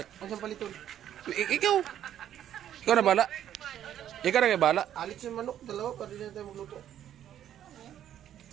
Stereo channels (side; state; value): left; quieter; 10.8 dB